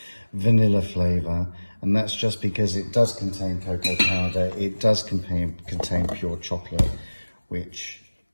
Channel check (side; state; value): both; inverted; correlation -1.00